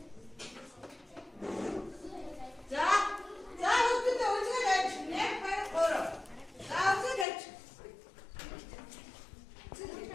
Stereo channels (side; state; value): right; drops out; at 7.2 s